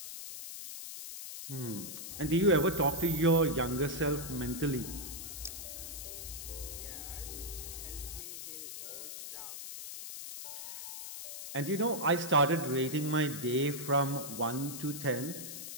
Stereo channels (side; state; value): left; noise; hiss, 8 dB below the sound